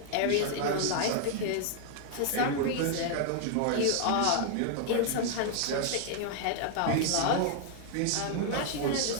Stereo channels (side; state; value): both; different; correlation 0.00